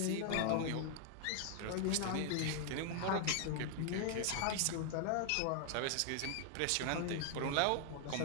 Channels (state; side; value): different; both; correlation 0.00